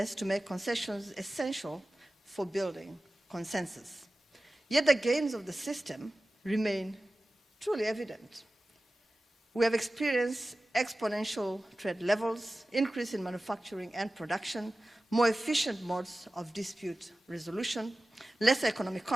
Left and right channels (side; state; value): both; normal; correlation 0.96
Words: to make concessions essential for building consensus. Yet the gains of the system remain truly evident. We have experienced exponential trade levels, increase in manufacturing and production, more efficient modes of dispute resolution, lesser economic